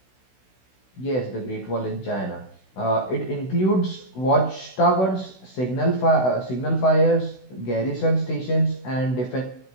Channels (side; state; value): right; late; 16 ms